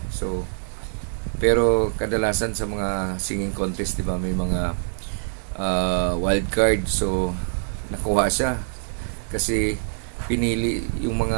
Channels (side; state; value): left; silent; digital silence